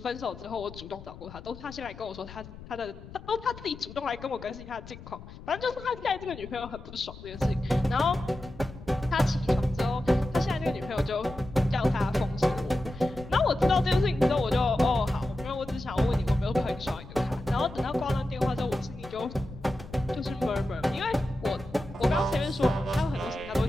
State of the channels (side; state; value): left; noise; rumble, 16 dB below the sound